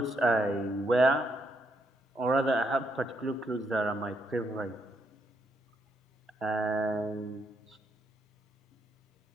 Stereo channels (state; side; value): normal; both; correlation 0.76